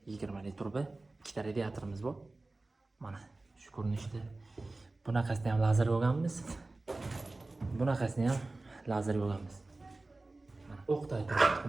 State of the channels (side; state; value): left; quieter; 3.1 dB